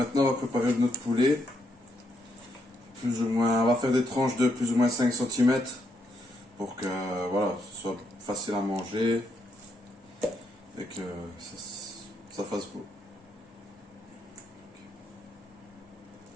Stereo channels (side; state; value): both; normal; correlation 0.78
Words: on va préparer notre poulet. Plus ou moins, on va faire des tranches de plus ou moins 5 cm pour que voilà, ce soit facile à manger et que ça fasse beau.